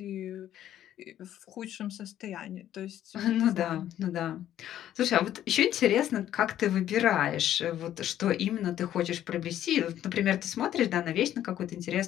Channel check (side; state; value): right; quieter; 11.7 dB